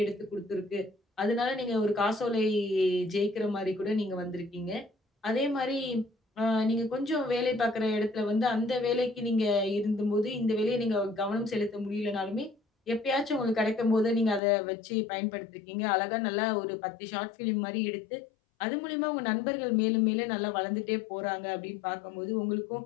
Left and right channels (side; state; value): right; drops out; at 14.4 s